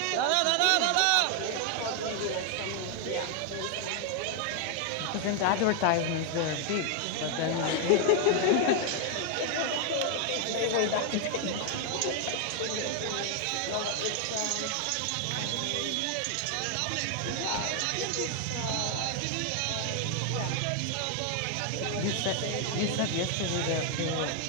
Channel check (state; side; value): different; both; correlation 0.00